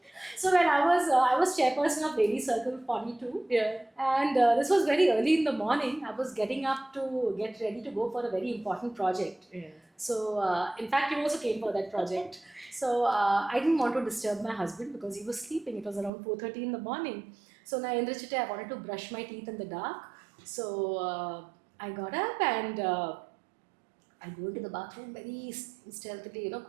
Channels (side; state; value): left; drops out; at 16.1 s